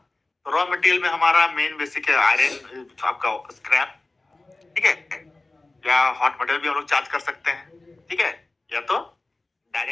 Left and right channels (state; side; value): quieter; right; 3.1 dB